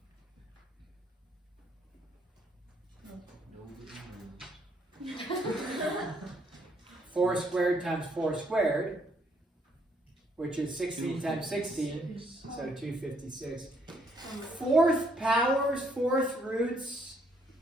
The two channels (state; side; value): normal; both; correlation 0.69